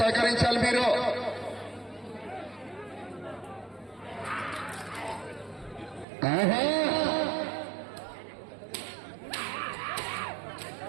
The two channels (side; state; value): left; drops out; at 6.1 s